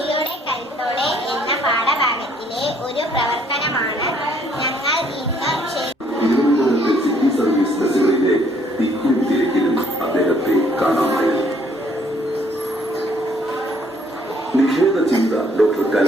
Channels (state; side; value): normal; both; correlation 0.64